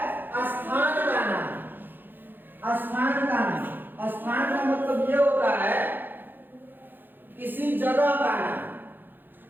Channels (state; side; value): late; left; 0.094 ms